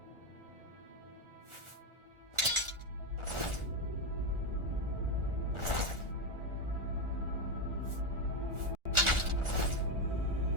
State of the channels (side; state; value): left; late; 1.4 ms